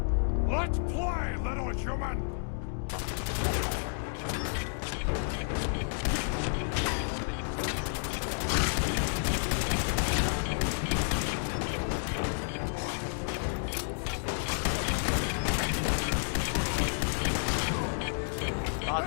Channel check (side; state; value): right; silent; digital silence